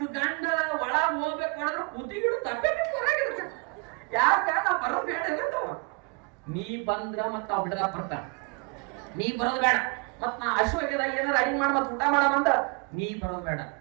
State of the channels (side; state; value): left; quieter; 32.7 dB